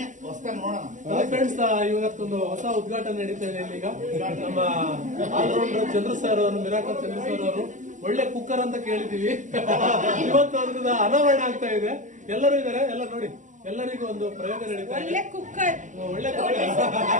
friends, ಇವತ್ತೊಂದು ಹೊಸ ಉದ್ಘಾಟನೆ ನಡೀತಾ ಇದೆ ಇಲ್ಲಿ. ಈಗ ನಮ್ಮ ಆಲ್ರೌಂಡರ್ ಚಂದ್ರ ಸರ್ ಅವರು, ಮಿರಾಕಲ್ ಚಂದ್ರ ಸರ್ ಅವರು ಒಳ್ಳೆ ಕುಕ್ಕರ್ ಅಂತ ಕೇಳಿದೀವಿ. ಇವತ್ತು ಅವ್ರದ್ದು ಅನಾವರಣ ಆಗ್ತಾ ಇದೆ. ಎಲ್ಲರೂ ಇದಾರೆ, ಎಲ್ಲ ನೋಡಿ, ಎಲ್ಲರಿಗೂ ಒಂದು ಪ್ರಯೋಗ ನಡೀತಾ ಇದೆ. ಒಳ್ಳೆ ಕುಕ್ಕರ್,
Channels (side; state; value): left; late; 0.36 ms